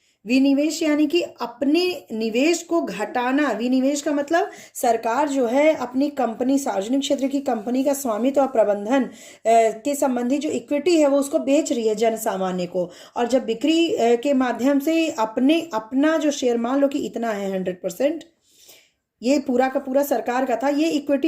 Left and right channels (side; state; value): both; identical; correlation 1.00